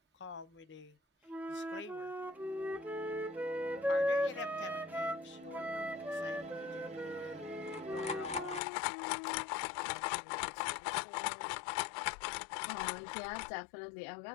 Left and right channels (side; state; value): right; drops out; at 8.6 s